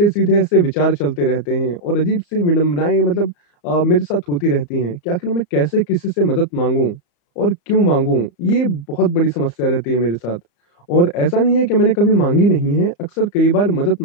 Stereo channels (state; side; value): late; right; 34 ms